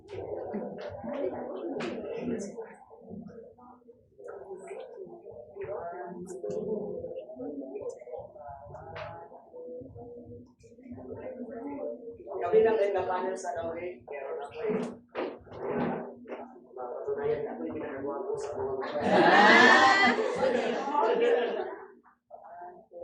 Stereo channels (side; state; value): both; identical; correlation 1.00